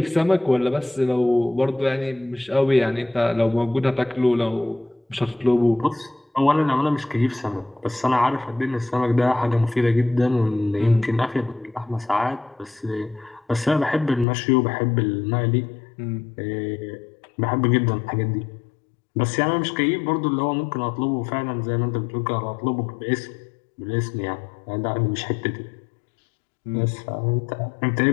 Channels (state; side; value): drops out; right; at 14.2 s